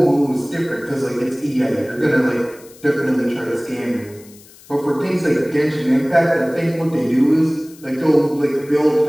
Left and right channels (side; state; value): left; noise; hiss, 23 dB below the sound